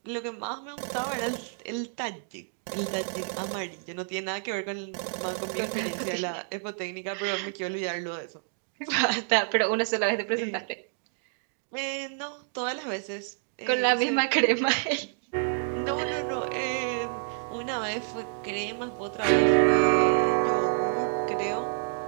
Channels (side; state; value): left; silent; digital silence